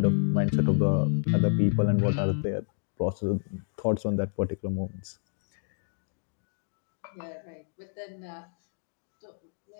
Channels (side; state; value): right; silent; digital silence